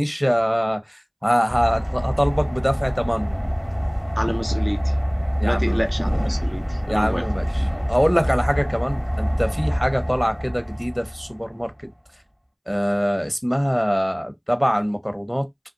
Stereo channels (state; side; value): identical; both; correlation 1.00